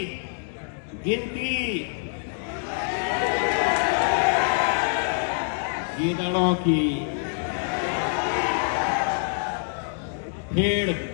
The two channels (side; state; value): right; silent; digital silence